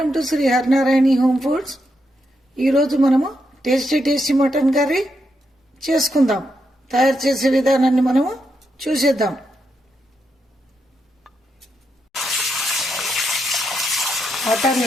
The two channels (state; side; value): normal; both; correlation 0.82